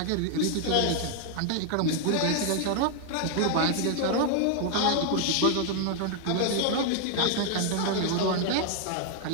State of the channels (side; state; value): both; different; correlation 0.00